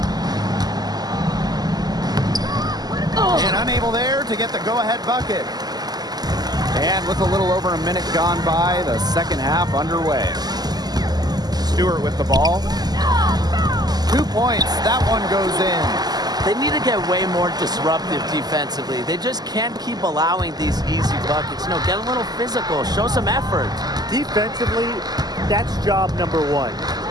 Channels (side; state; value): left; late; 0.20 ms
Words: And unable there to get the go-ahead bucket. And with a little over a minute gone by, the second half underway. Stewart with the ball. 2 points. That one goes in. They need to get way more disruptive defensively. They just can't keep allowing these easy buckets. You know, get a little physical, show some effort. Defensively, that's job number one.